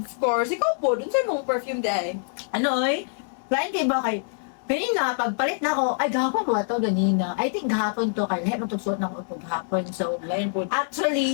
Of course, ikaw po, dun sa mong perfume day. ano eh? Lain kay ba kay kanina, pagpalit na ako, ay gahapon ba ito ganina? I think gahapon to, kaya lahat matugsuot na ako ito gahapon. So, Lain po.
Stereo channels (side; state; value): right; silent; digital silence